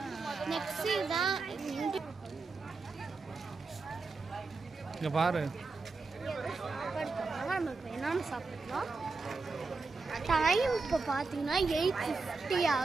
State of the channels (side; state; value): left; quieter; 4.1 dB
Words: நெக்ஸ்ட் தான் இங்க பாரு, நமக்கு என்னன்னு சாப்பிடலாம். டைம் இப்போ பார்த்தீங்கன்னா 8:50